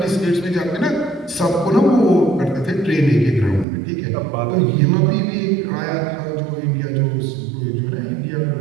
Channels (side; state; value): left; drops out; at 3.7 s